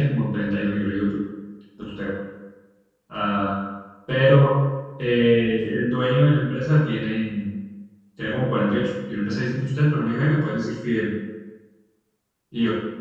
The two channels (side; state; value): both; identical; correlation 1.00